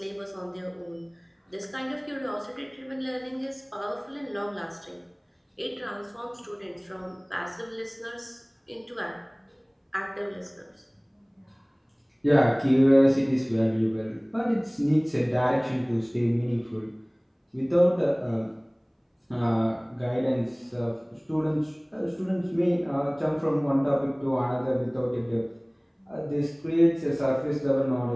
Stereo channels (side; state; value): both; identical; correlation 1.00